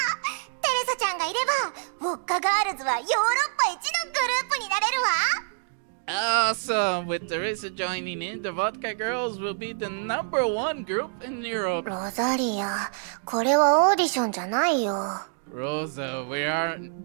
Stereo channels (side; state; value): left; silent; digital silence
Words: テレサちゃんがいればウォッカガールズはヨーロッパ一のグループになれるわ。 Awesome! With Teresa joining in, the Vodka Girls will be the #1 group in Europe. ロザリア、これはオーディションじゃないよ。 Rosa, we are